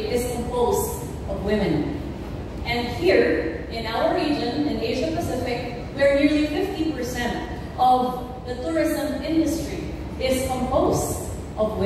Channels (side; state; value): both; identical; correlation 1.00